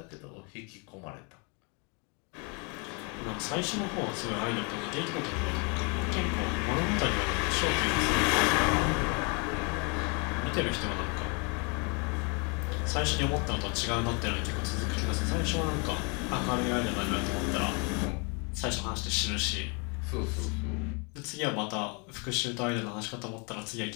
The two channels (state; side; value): quieter; right; 33.7 dB